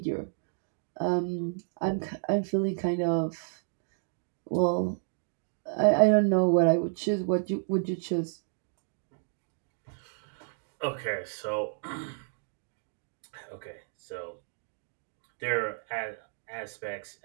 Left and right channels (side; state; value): left; silent; digital silence